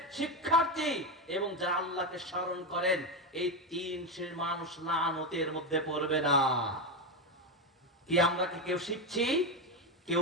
শিক্ষার্থী এবং যারা আল্লাহকে স্মরণ করেন, এই 3 শ্রেণীর মানুষ লানতের মধ্যে পড়বে না। কি আমরা কি কেউ শিখছি,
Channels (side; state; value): both; normal; correlation 0.12